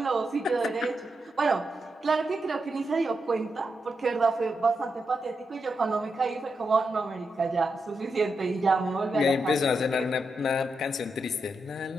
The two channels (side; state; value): both; normal; correlation 0.85